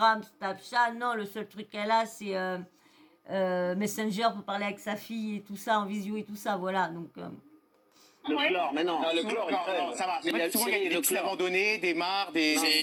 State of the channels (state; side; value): identical; both; correlation 1.00